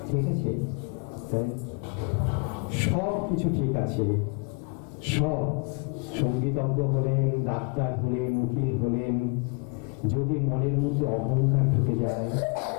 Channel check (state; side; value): quieter; right; 34.0 dB